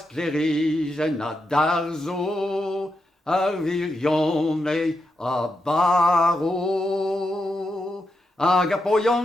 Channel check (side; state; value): both; normal; correlation 0.85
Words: a darzo, ar virion a baro. Hag a